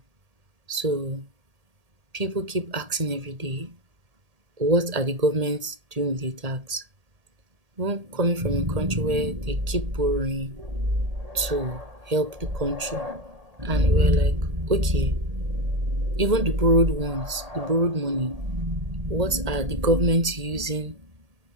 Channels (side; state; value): left; late; 1.8 ms